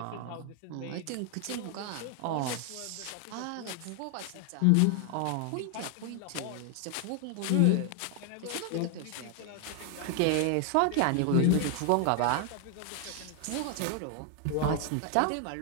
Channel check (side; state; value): both; different; correlation 0.00